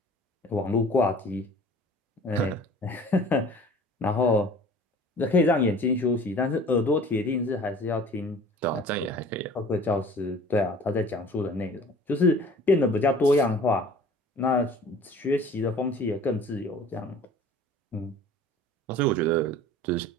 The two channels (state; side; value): normal; both; correlation 0.46